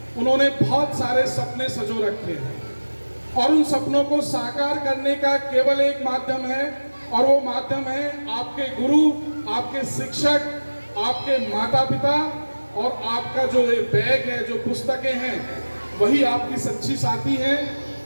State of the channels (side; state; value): both; inverted; correlation -1.00